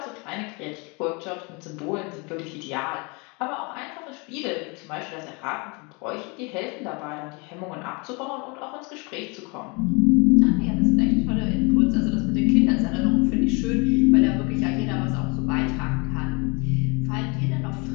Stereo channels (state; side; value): quieter; right; 29.8 dB